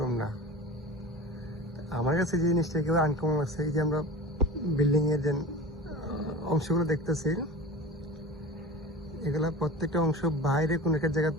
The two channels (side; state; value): both; normal; correlation 0.34